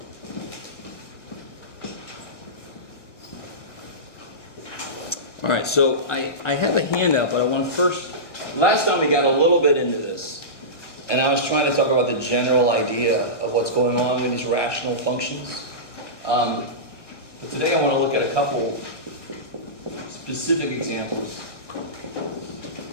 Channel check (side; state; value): right; late; 1.0 ms